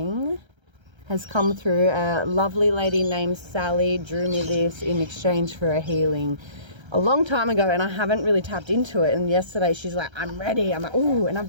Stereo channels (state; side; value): late; left; 1.3 ms